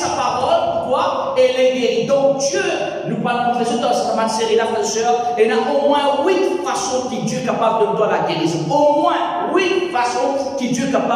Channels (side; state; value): both; identical; correlation 1.00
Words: parole, pourquoi? Et les guérit. Donc Dieu, nous parlons de dans cette série là, frères et sœurs, il y a au moins 8 façons que Dieu est capable de nous donner la guérison. Au moins 8 façons que Dieu est